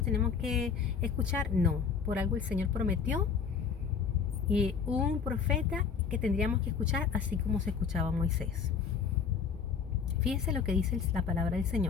tenemos que escuchar. No, por algo el Señor prometió y un profeta que tendríamos que escuchar así como se escuchaba Moisés. Fíjense lo que dice la palabra del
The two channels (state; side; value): quieter; right; 6.3 dB